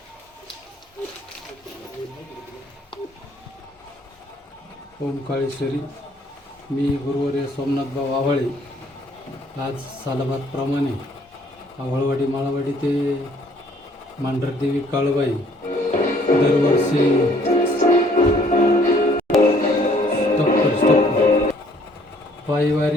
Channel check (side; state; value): both; normal; correlation 0.61